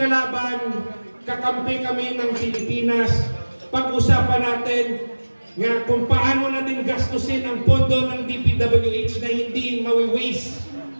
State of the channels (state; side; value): inverted; both; correlation -1.00